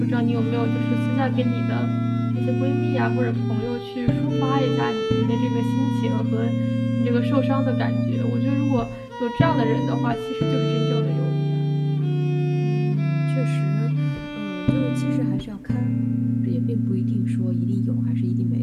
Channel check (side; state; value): both; identical; correlation 1.00